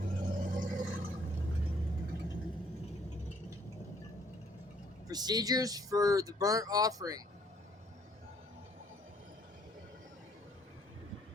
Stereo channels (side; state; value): both; normal; correlation 0.63